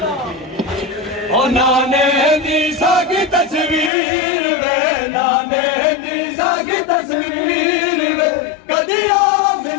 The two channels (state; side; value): drops out; right; at 3.9 s